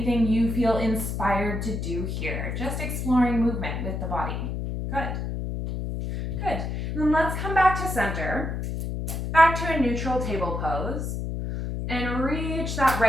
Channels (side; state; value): left; noise; hum, 3 dB below the sound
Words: you feel inspired to do here. Just exploring movement with the body. Good. Good. Then let's come back to center, back to a neutral table pose, and reach that